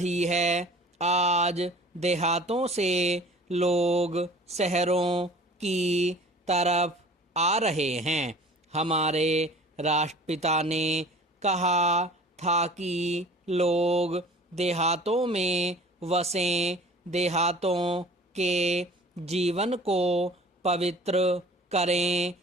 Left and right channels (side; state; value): both; normal; correlation 0.46